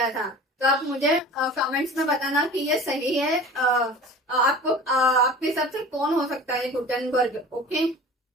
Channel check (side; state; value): both; normal; correlation 0.39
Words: था। तो आप मुझे कमेंट्स में बताना कि ये सही है, आपके हिसाब से कौन हो सकता है गुटेनबर्ग, ओके।